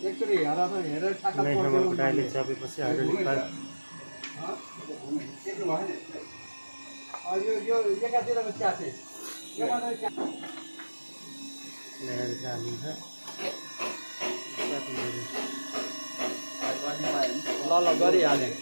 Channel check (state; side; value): inverted; both; correlation -1.00